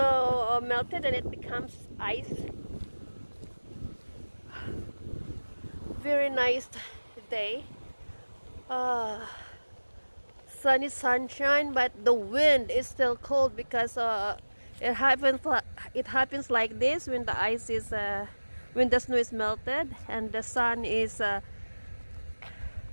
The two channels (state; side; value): inverted; both; correlation -1.00